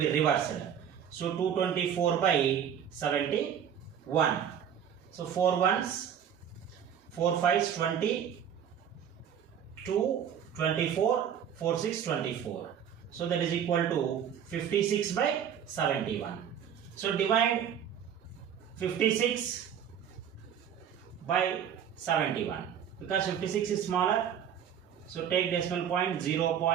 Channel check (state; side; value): quieter; left; 8.7 dB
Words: reversed. So 224 by 71. So 4 ones, 4 5s 20, 2 24, 4 6 24. So that is equal to 56 by 71. So divide 56 by 71 because 56 is smaller. So take decimal point 0